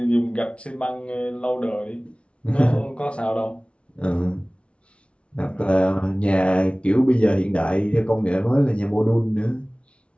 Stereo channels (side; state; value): right; late; 0.060 ms